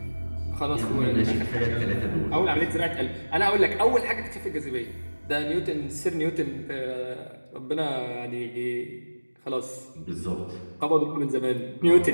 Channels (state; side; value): inverted; both; correlation -1.00